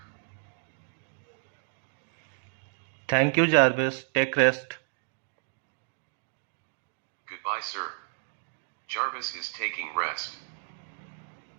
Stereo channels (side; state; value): left; silent; 57 dB below the other